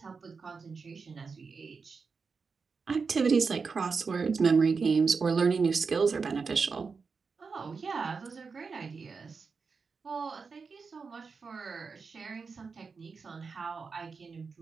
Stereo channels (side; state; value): left; quieter; 5.0 dB